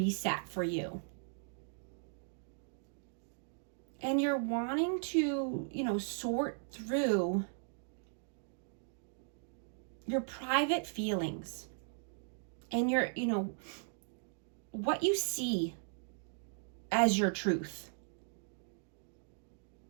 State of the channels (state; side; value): silent; left; digital silence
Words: for you. And you're wanting to, sort through your private feelings. And your, what you see as your truth,